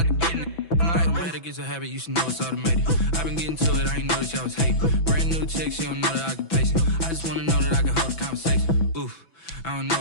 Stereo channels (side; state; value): right; late; 6.0 ms